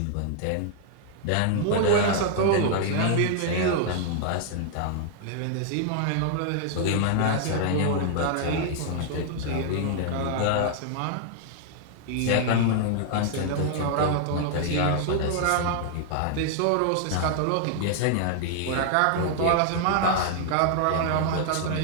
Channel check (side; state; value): both; different; correlation 0.00